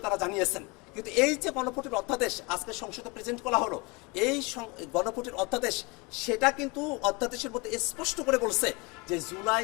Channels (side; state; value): right; quieter; 27.4 dB